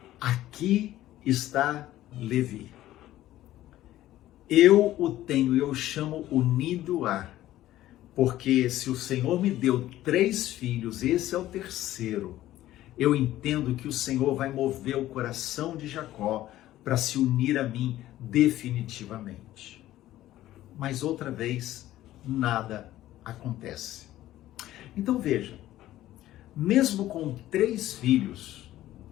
aqui está Levi. Eu o tenho, eu chamo unido a. Porque se o Senhor me deu 3 filhos, esse é o terceiro. Eu entendo que o Senhor vai mover o coração de Jacó para se unir a mim definitivamente. Mas outra vez, nada acontece. Então veja, mesmo com 3 filhos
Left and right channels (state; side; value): quieter; right; 14.4 dB